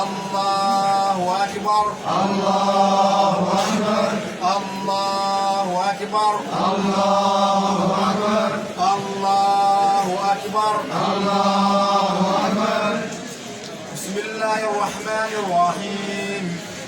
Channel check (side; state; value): both; identical; correlation 1.00